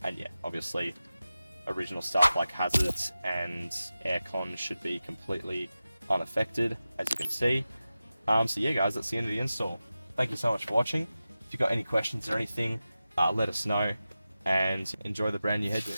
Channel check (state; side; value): inverted; both; correlation -0.94